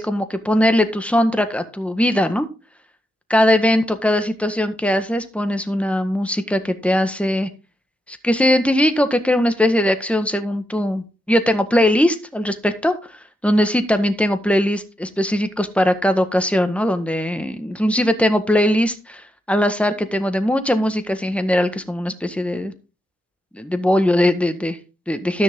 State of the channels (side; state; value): both; normal; correlation 0.84